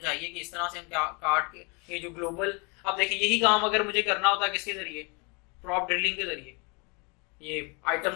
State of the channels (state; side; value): quieter; right; 31.5 dB